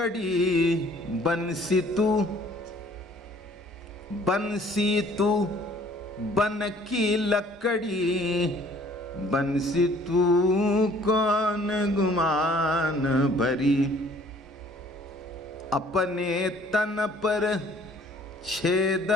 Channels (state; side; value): normal; both; correlation 0.56